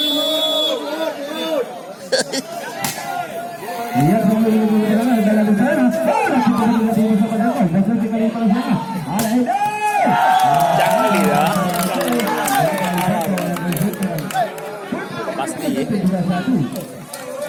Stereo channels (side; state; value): both; identical; correlation 1.00